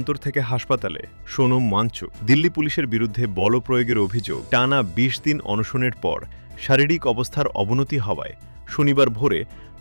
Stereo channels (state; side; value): inverted; both; correlation -1.00